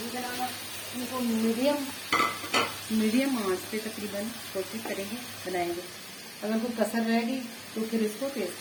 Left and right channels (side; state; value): both; identical; correlation 1.00